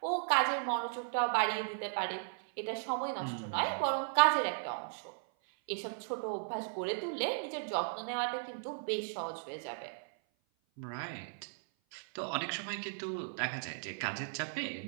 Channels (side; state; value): left; silent; 54 dB below the other